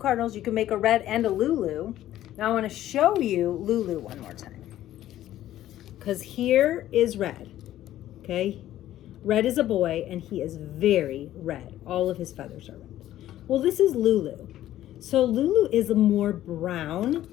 You can make a red and a Lulu. Now I want to show you Lulu one more time, because here is red. Okay, red is a boy and he is very red. All of his feathers are red. Well, this is Lulu. So Lulu is more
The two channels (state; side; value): quieter; right; 13.3 dB